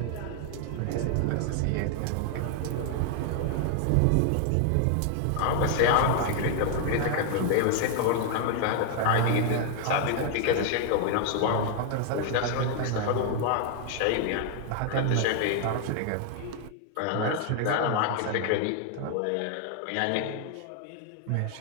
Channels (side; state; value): both; different; correlation 0.00